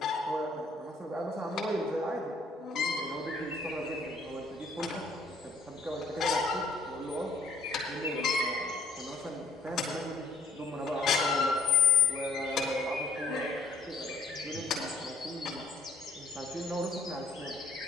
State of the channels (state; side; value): quieter; right; 3.4 dB